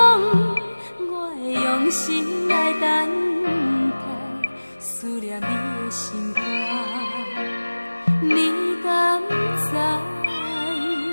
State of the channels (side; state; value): both; inverted; correlation -1.00